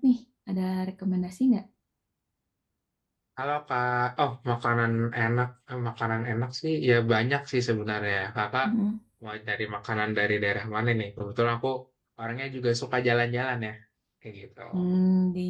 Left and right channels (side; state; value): both; identical; correlation 1.00